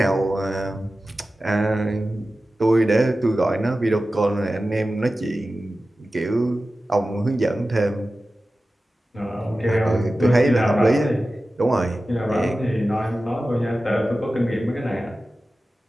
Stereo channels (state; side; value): normal; both; correlation 0.95